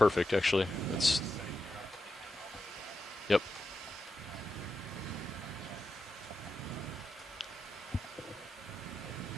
actually. That's. Yep.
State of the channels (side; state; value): both; normal; correlation 0.87